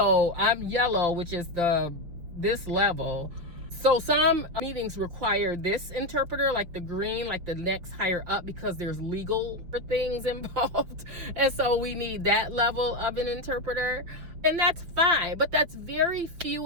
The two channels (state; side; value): late; left; 6.0 ms